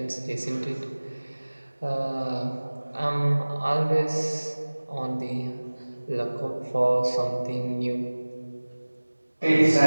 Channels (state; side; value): inverted; both; correlation -1.00